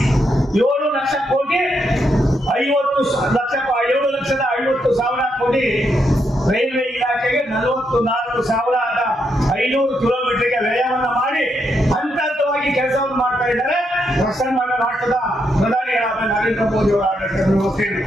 7 ಲಕ್ಷ ಕೋಟಿ 7,50,000 ಕೋಟಿ ರೈಲ್ವೆ ಇಲಾಖೆಗೆ 44,500 ಕಿಲೋಮೀಟರ್ಗೆ ವ್ಯಯವನ್ನು ಮಾಡಿ ಹಂತವಾಗಿ ಕೆಲಸವನ್ನು ಮಾಡ್ತಾ ಇದ್ದಾರೆ. ಪ್ರಸನ್ನ ರಾಷ್ಟ್ರದ ಪ್ರಧಾನಿಗಳಾದ ನರೇಂದ್ರ ಮೋದಿ ಅವರ ಆಡಳಿತದ ವ್ಯವಸ್ಥೆಯಲ್ಲಿ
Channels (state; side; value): normal; both; correlation 0.79